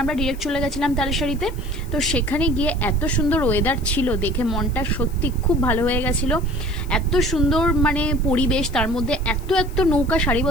আমরা ডিরেক্ট চলে গেছিলাম তালসারিতে। তো সেখানে গিয়ে এত সুন্দর ওয়েদার ছিল, দেখে মনটা সত্যি খুব ভালো হয়ে গেছিলো। এত সুন্দর মানে পরিবেশ, তার মধ্যে এত এত নৌকা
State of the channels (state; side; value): noise; left; hiss, 22 dB below the sound